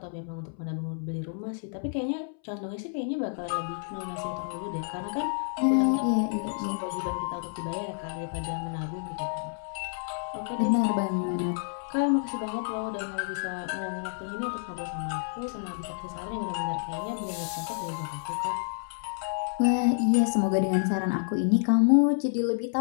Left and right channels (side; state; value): right; silent; 58 dB below the other